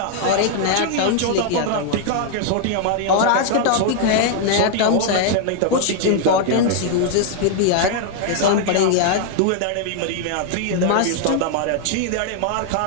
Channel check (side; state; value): both; different; correlation 0.00